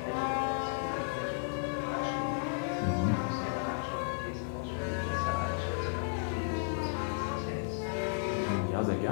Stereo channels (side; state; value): right; silent; digital silence